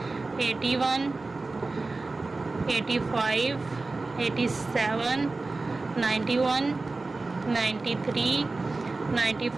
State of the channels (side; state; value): left; quieter; 3.5 dB